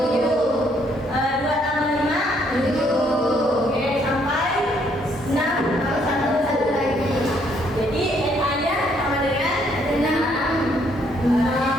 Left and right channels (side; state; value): both; normal; correlation 0.69